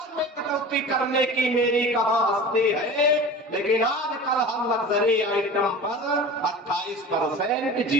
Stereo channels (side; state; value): both; normal; correlation 0.36